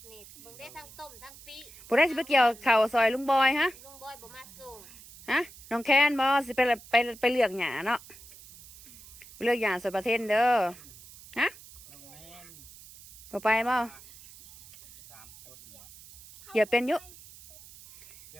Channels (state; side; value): noise; right; hiss, 19 dB below the sound